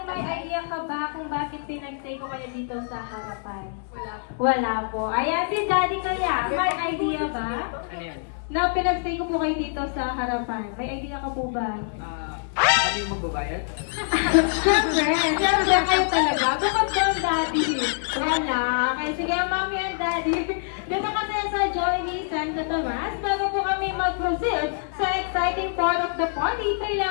may idea ka ba kung bakit pinag-stay ko kayo dito sa harapan? Wala po. Ayan, si Daddy kaya, may idea ba? Ano yan? Na pinag-stay ko po kayo dito sa harapan. May idea ka po ba? Kami yung magbabayad? Siyempre kayo talaga. Bukod yung Daddy. Wala. Kaya sige, Mommy and Daddy. Dito kasi sa Jollibee Santo Tomas, bago po kami mag-proceed sa exciting part of the party,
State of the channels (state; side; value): silent; right; digital silence